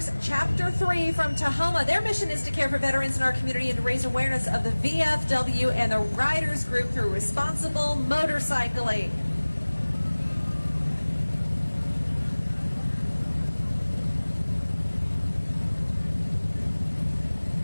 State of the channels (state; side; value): inverted; both; correlation -1.00